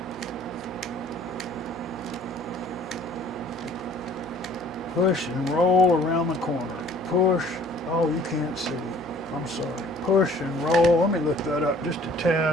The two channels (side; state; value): both; normal; correlation 0.54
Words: Push and roll around the corner. Push. Oh, you can't see. I'm sorry. Push and roll. Let me lift that up just a